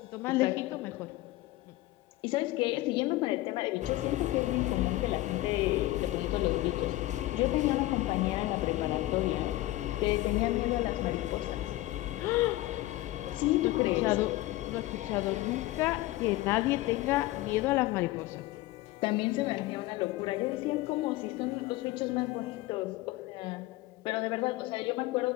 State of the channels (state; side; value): quieter; right; 17.4 dB